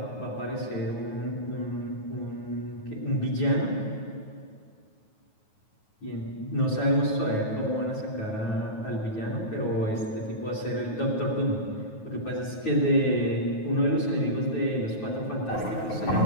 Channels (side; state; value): right; late; 9.3 ms